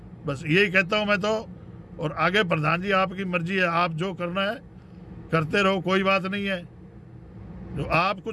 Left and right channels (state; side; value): identical; both; correlation 1.00